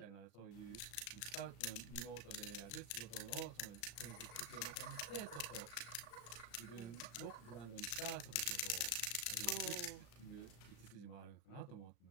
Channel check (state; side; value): late; right; 35 ms